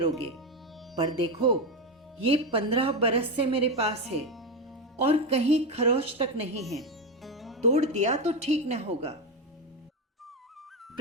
पर देखो ये 15 बरस से मेरे पास है और कहीं खरोच तक नहीं है, तोड़ दिया तो ठीक न होगा।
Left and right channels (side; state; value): both; normal; correlation 0.12